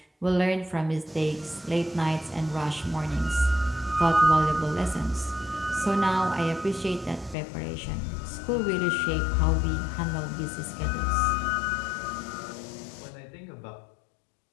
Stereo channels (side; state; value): right; drops out; at 7.4 s